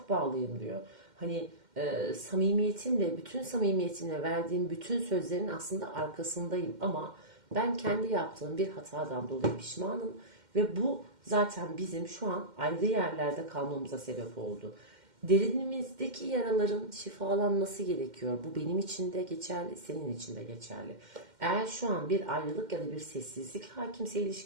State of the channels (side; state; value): left; late; 2.1 ms